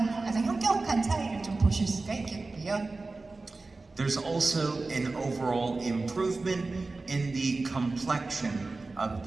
가장 현격한 차이를 좀 보실 수가 있겠고요. There's also an overall improvement in the complexion of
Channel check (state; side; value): quieter; left; 3.5 dB